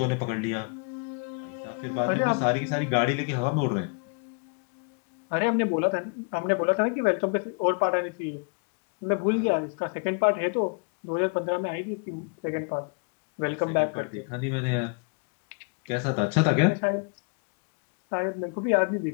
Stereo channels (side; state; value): right; quieter; 34.6 dB